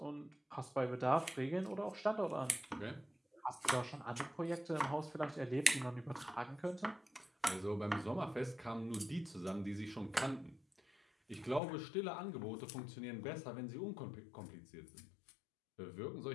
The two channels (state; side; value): drops out; right; at 11.6 s